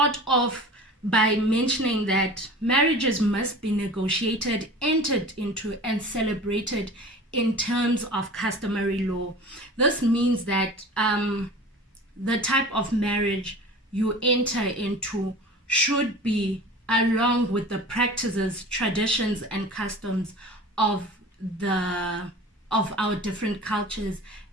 off by mentioning that marriages must be negotiated, entered into, and celebrated in terms of customary law. This means that the type of marriage you enter into should be along with the practices, traditions, and customs of our different cultures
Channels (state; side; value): normal; both; correlation 0.38